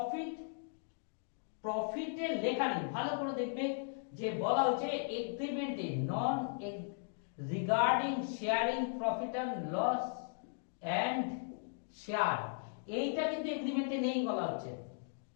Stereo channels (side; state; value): right; silent; digital silence